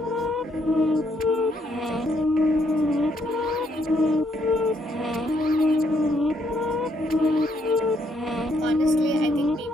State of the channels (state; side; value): normal; both; correlation 0.72